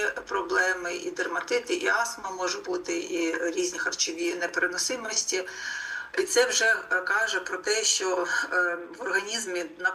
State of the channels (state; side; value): identical; both; correlation 1.00